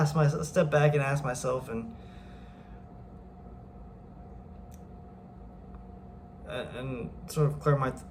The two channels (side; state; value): both; identical; correlation 1.00